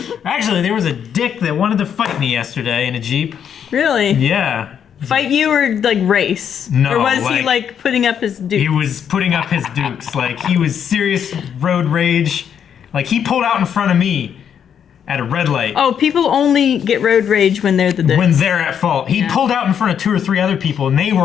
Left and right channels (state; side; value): quieter; right; 8.3 dB